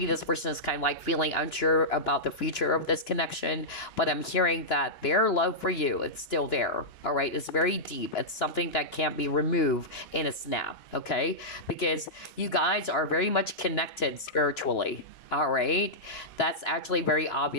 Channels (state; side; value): late; right; 2.9 ms